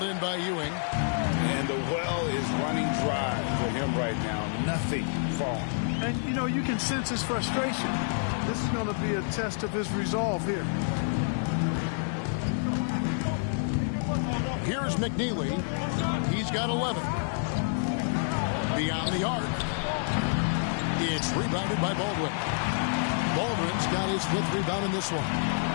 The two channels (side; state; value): right; silent; 59 dB below the other